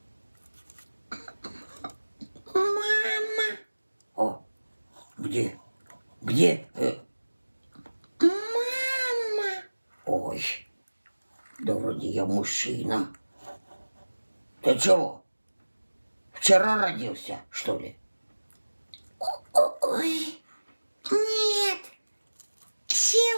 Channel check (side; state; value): both; inverted; correlation -1.00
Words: Мама! О, где? Где? Мама! Ой, да вроде я мужчина. Ты чего? Вчера родился, что ли? Ой, нет,